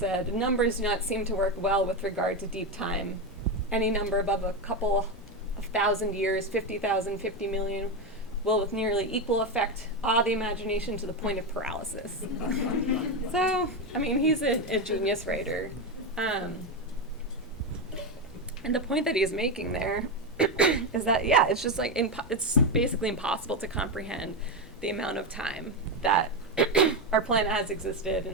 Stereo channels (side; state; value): both; normal; correlation 0.11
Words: "Numbers do not seem to work well with regard to deep time. Any number above a couple of thousand years, 50,000, 50 million, will with nearly equal effect awe the imagination to the point of paralysis. So, I mean, he's a genius writer. And the point that he's making there is that, yeah, it's just like, it's basically impossible to comprehend the amount of time that our planet has existed